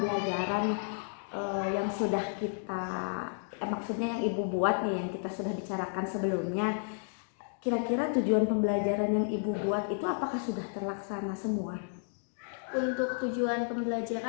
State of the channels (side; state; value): right; silent; digital silence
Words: yang sudah kita maksudnya yang Ibu buat nih, yang kita sudah bicarakan sebelumnya, kira-kira tujuan pembelajaran yang Ibu buat itu apakah sudah terlaksana semua? Untuk tujuan